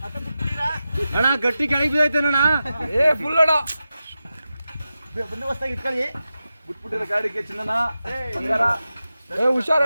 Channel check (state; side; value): inverted; both; correlation -0.92